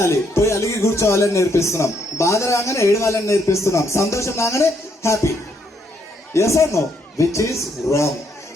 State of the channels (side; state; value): both; normal; correlation 0.73